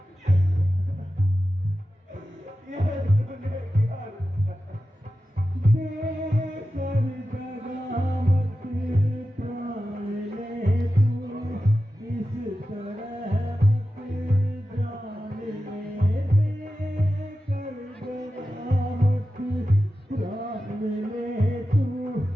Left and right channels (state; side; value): normal; both; correlation 0.93